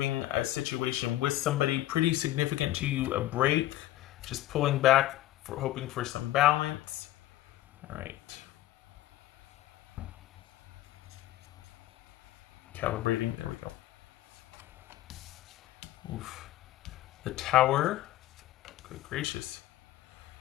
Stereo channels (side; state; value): right; quieter; 15.2 dB